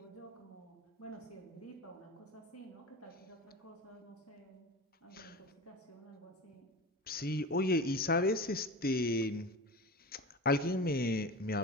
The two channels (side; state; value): both; normal; correlation 0.30